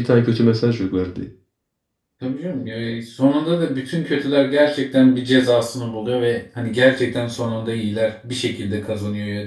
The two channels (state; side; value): identical; both; correlation 1.00